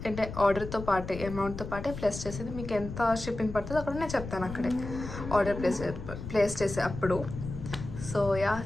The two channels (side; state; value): left; noise; rumble, 9 dB below the sound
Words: పాటే అమౌంట్తో పాటే ప్లస్ చేసేది మీకు ఎంత షిప్పింగ్ పడుతుందో అక్కడ నేను చెప్తాను, అక్కడే ఆర్డర్ ప్లేస్ చేసే అప్పుడు. So yeah,